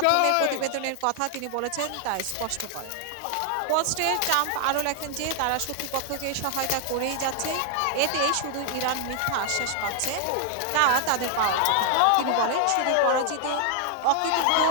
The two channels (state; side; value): different; both; correlation 0.00